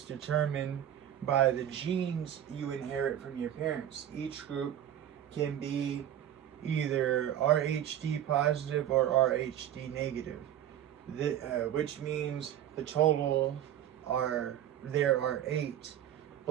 determined by the genes you inherit from your parents. Each group can be either RhD positive or RhD negative, which means the total there are 8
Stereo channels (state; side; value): quieter; left; 11.0 dB